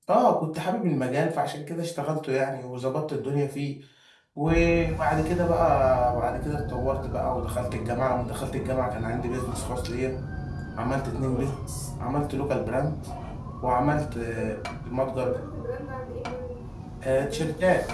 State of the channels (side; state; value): both; identical; correlation 1.00